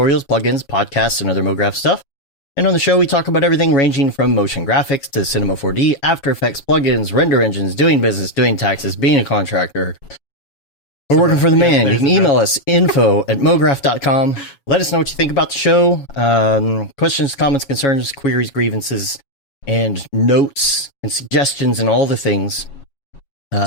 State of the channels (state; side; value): late; right; 7.2 ms